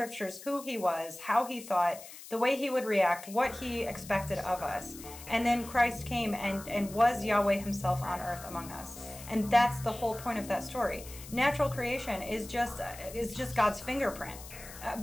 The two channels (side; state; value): left; noise; hiss, 15 dB below the sound